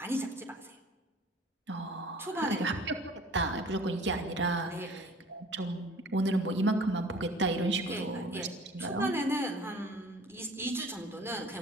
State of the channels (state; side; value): normal; both; correlation 0.48